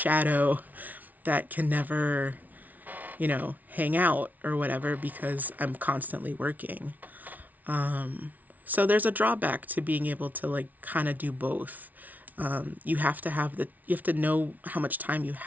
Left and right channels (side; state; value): left; late; 0.077 ms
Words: that can never, hang out or whatever because I'm constantly working. So there's a drawback to being able to like kind of do both. You have to know how much time you